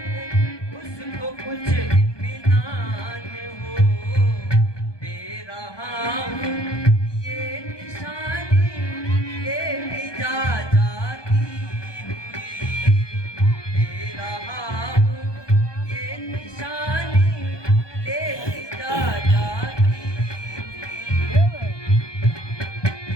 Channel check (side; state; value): right; late; 1.2 ms